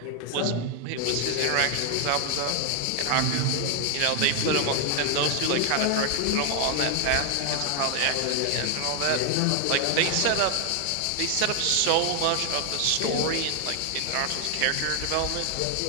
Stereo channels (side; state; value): both; different; correlation 0.00